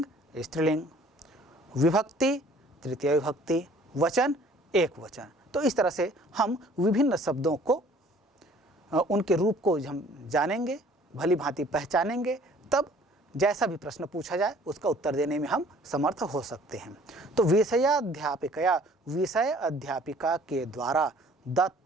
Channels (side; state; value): both; normal; correlation 0.54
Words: स्त्रीलिंग, विभक्ति तृतीय विभक्ति, वचन एक वचन। तो इस तरह से हम विभिन्न शब्दों को उनके रूप को हम जानेंगे, भली भांति पहचानेंगे, तब जैसा भी प्रश्न पूछा जाए उसका उत्तर देने में हम समर्थ हो सकते हैं। तो विषयाध्यापिकया विषय अध्यापिका के द्वारा